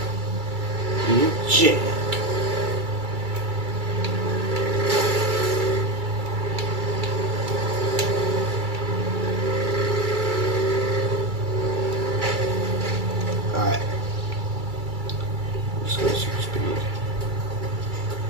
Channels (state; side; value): late; left; 2.3 ms